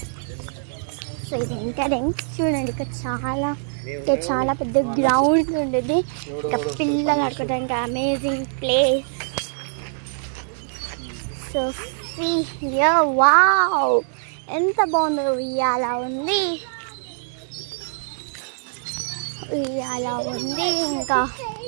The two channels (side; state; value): left; silent; 63 dB below the other